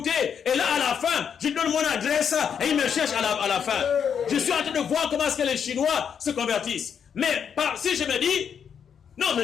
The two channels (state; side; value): quieter; right; 7.5 dB